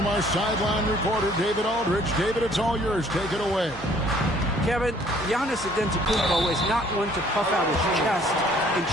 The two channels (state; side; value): normal; both; correlation 0.59